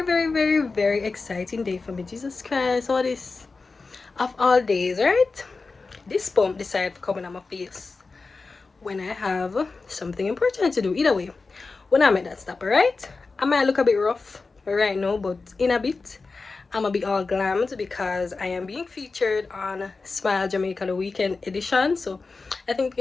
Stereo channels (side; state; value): right; quieter; 4.0 dB